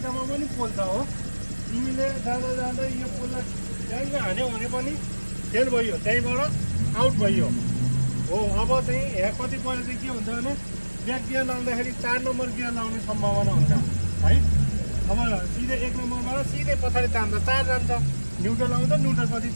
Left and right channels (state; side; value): inverted; both; correlation -1.00